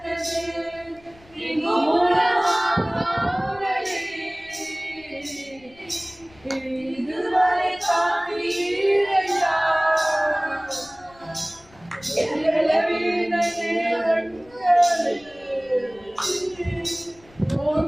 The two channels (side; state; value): left; noise; rumble, 27 dB below the sound